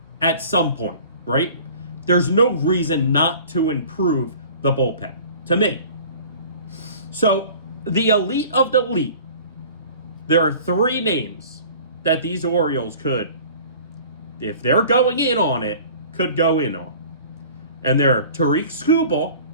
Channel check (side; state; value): both; inverted; correlation -0.45